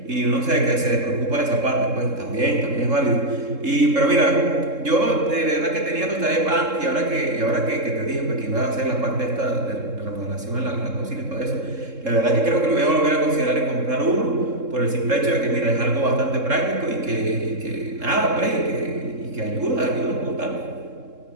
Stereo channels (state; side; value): late; left; 3.7 ms